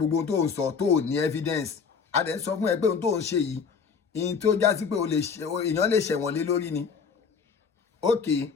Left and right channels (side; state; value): right; quieter; 5.9 dB